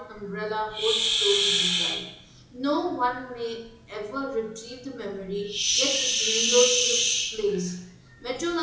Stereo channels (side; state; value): both; identical; correlation 1.00